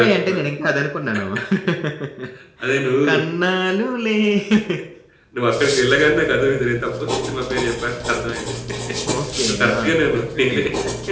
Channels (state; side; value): identical; both; correlation 1.00